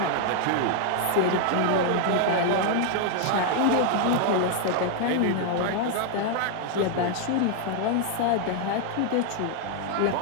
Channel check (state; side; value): different; both; correlation 0.00